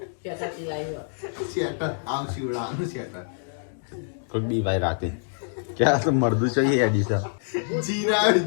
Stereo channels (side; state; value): right; silent; digital silence